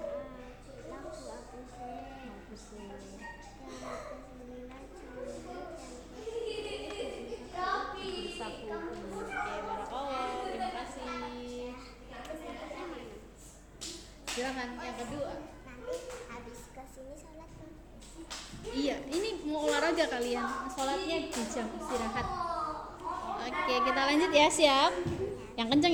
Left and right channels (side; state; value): both; identical; correlation 1.00